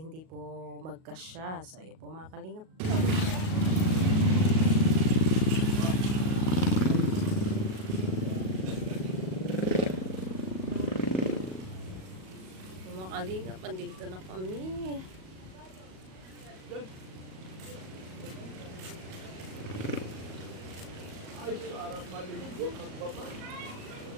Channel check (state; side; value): late; left; 38 ms